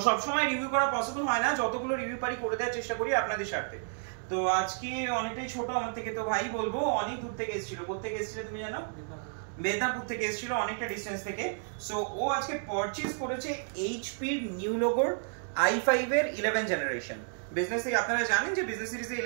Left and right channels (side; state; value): left; silent; digital silence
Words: সব সময় রিভিউ করা পসিবল হয় না, যতগুলো রিভিউ পারি করে দেওয়ার চেষ্টা করি আপনাদের স্বার্থে। তো আজকে অনেকটাই ছোট আমার থেকে, তো ভাই বলবো অনেক দূর থেকে এসেছিল। কোথা থেকে এসেছিল তুমি জানো? মেদিনীপুর থেকে এসেছিল, অনেকটা ডিস্টেন্স থেকে। সো ও আজকে পারচেজ করেছে এইচপি এর নিউ লোগোর i5 এর 11 জেনারেশন। বিজনেস থেকে আপনারা জানেন যে বিজনেস সিরিজে